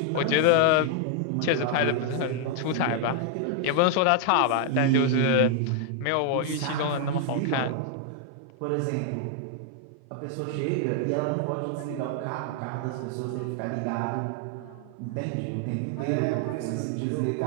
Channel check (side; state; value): both; different; correlation 0.00